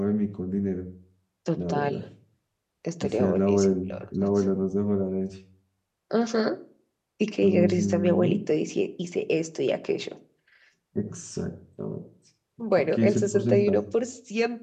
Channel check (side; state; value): both; identical; correlation 1.00